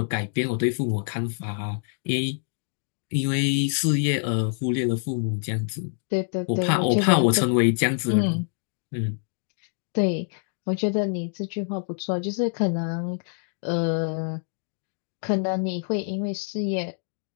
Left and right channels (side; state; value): right; silent; digital silence